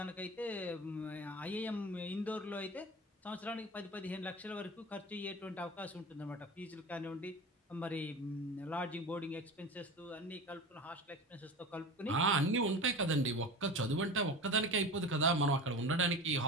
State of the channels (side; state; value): both; normal; correlation 0.31